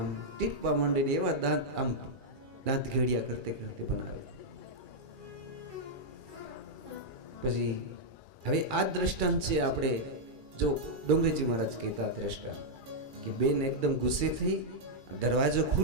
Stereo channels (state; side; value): late; left; 2.3 ms